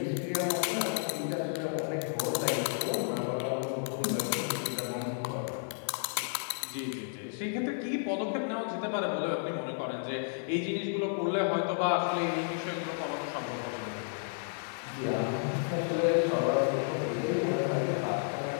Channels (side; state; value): right; silent; digital silence